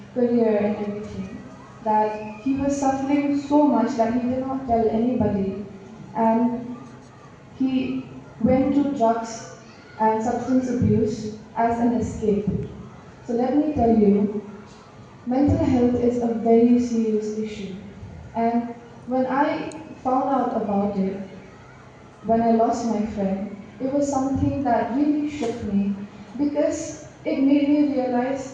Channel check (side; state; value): both; identical; correlation 1.00